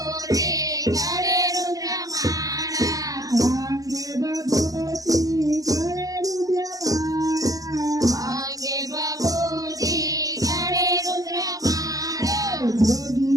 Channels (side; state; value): left; late; 0.17 ms